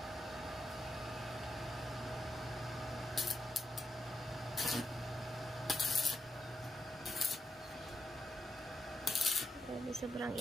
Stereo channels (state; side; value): normal; both; correlation 0.82